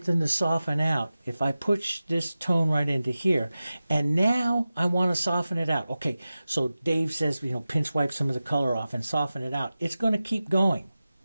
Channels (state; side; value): inverted; both; correlation -0.95